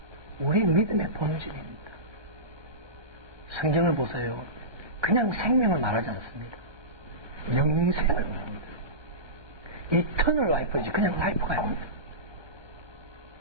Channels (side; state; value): left; late; 1.2 ms